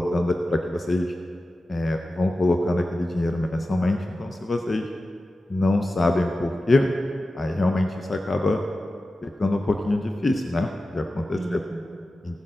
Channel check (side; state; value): both; normal; correlation 0.94